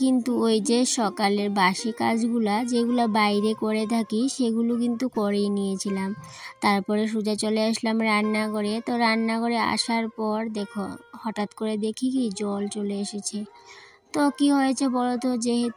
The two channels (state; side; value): identical; both; correlation 1.00